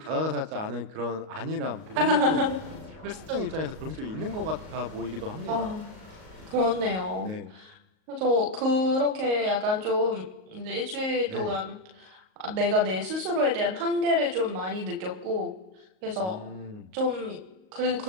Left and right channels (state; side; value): late; left; 38 ms